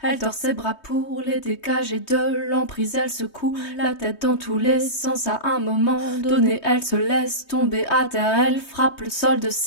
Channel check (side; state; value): right; late; 3.2 ms